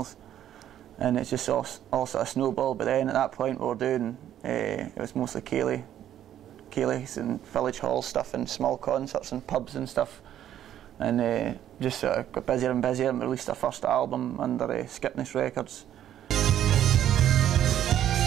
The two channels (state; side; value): quieter; left; 11.1 dB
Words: and it's just all sort of snowballed. But then at that point we were doing, it was mostly Cayley's and village hall stuff and small concerts and pubs and stuff, and just sort of got busier and busier, and released our first album under Skipness Records.